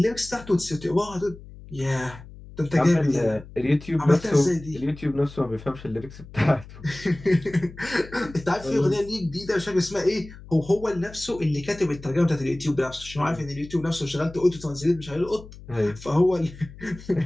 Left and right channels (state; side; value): noise; left; hum, 17 dB below the sound